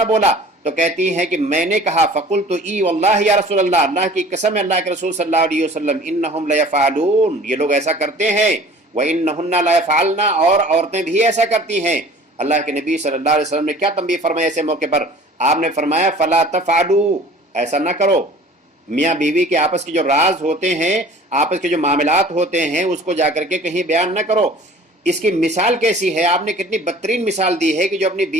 بولا، تو کہتی ہیں کہ میں نے کہا فقلت ای واللہ یا رسول اللہ، اللہ کی قسم ہے اللہ کے رسول صلی اللہ علیہ وسلم، انہم لیفعلون، یہ لوگ ایسا کرتے ہیں، وانہن لیفعلن، اور عورتیں بھی ایسا کرتی ہیں۔ اللہ کے نبی صلی اللہ علیہ وسلم نے کیا تنبیہ فرمایا ایسے موقع پر؟ آپ نے فرمایا فلا تفعلوا، ایسا نہ کرو۔ میاں بیوی کے آپس کے جو راز ہوتے ہیں، آپس کے جو معاملات ہوتے ہیں، اس کو جا کر کے کہیں بیان نہ کرو۔ اس کی مثال کیسی ہے؟ آپ نے کتنی بدترین مثال دی ہے کہ جو اپنی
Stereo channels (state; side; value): normal; both; correlation 0.47